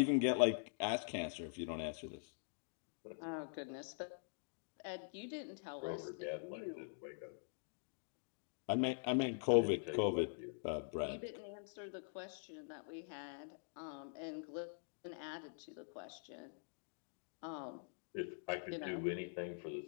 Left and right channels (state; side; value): silent; right; digital silence